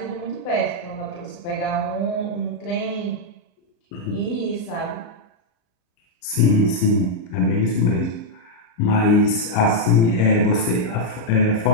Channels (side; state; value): right; late; 34 ms